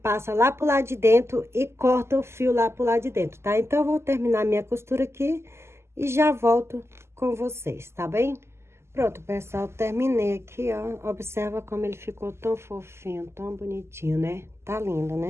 lá pro lado de dentro e corta o fio lá pro lado de dentro, tá? Então, eu vou terminar minha costura aqui e já volto com vocês, tá bem? Pronto, pessoal, terminei aqui, ó. Observa como ele ficou tão fofinho, tão bonitinho, né? Tá lindo, né?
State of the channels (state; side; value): late; left; 0.13 ms